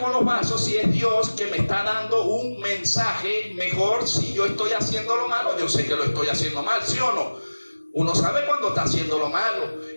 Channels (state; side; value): inverted; both; correlation -1.00